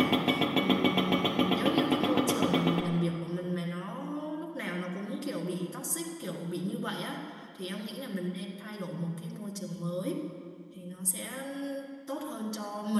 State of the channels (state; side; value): identical; both; correlation 1.00